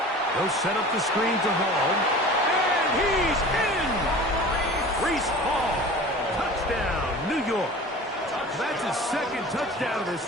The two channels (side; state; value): both; normal; correlation 0.40